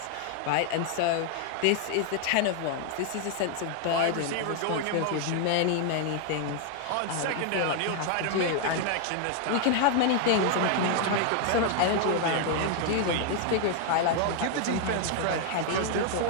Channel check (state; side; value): different; both; correlation 0.00